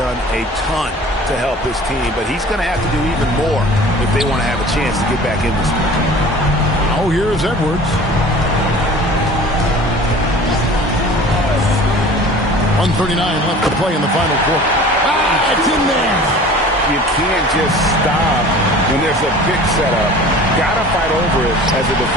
a ton to help his team, but he's going to have to do even more if they want to have a chance to get back in this one. Oh, here's Edwards. 1:39 left to play in the final quarter. It's in there. You can't just stop when there's a big setup. Gotta fight over it as a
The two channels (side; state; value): both; normal; correlation 0.44